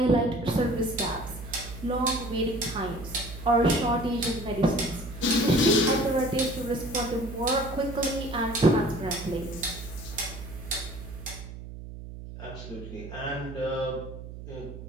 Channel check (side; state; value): right; noise; hum, 12 dB below the sound